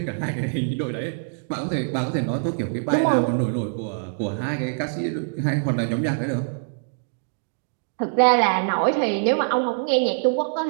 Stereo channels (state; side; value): silent; left; digital silence